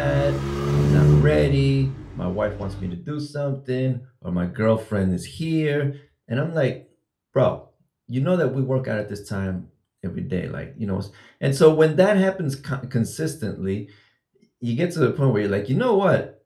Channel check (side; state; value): both; identical; correlation 1.00